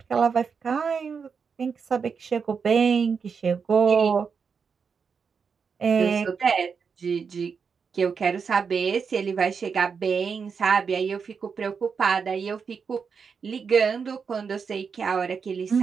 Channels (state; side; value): quieter; left; 5.9 dB